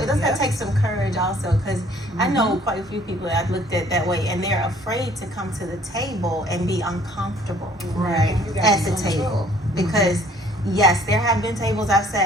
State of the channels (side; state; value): both; normal; correlation 0.58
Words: take some courage also, because I know quite a few people that I've looked at that way, and they're afraid to come to the table and be uncomfortable, right, at the table, because yes, there have been tables I've